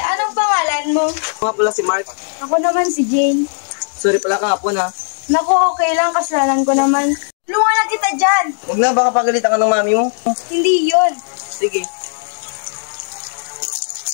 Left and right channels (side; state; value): right; silent; digital silence